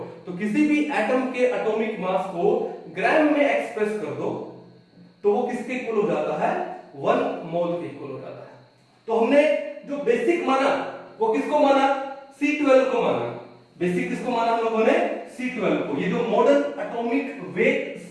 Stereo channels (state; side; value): identical; both; correlation 1.00